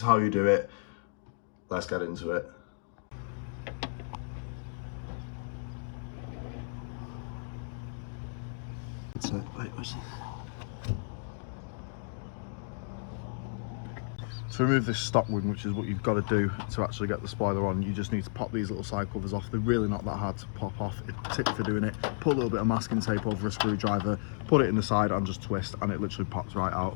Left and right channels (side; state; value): right; silent; digital silence